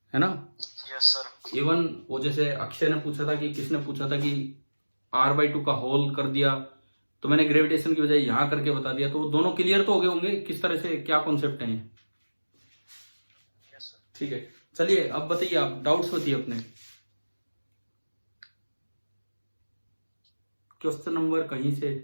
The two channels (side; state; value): both; inverted; correlation -1.00